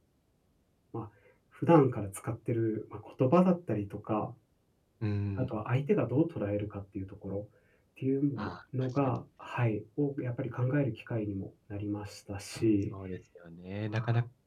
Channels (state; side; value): identical; both; correlation 1.00